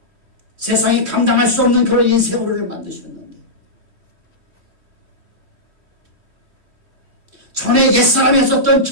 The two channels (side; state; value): left; late; 3.1 ms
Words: 세상이 감당할 수 없는 그런 인생으로 우리를 만드셨는데 전에 옛사람이 했었던